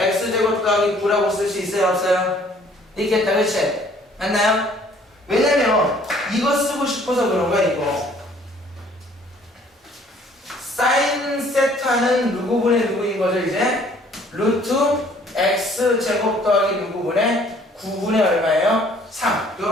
더하기 9라고 쓸 수 있어요, 없어요? 있겠다, 그치? 맞나요? 왜냐면 이거 쓰고 싶어서 그런 거야, 이거. 사인 세타는 누구분의 누구인 거죠, 이제? 루트 x제곱 더하기 누구분의 9분의 얼마예요? 3.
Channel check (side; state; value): both; normal; correlation 0.58